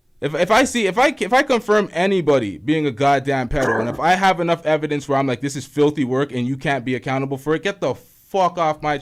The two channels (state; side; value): identical; both; correlation 1.00